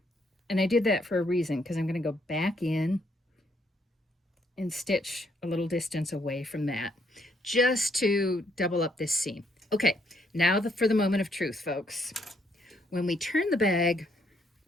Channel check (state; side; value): normal; both; correlation 0.72